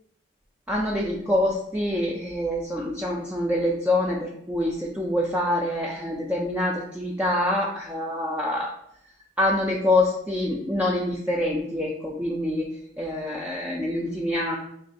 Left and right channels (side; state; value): both; normal; correlation 0.60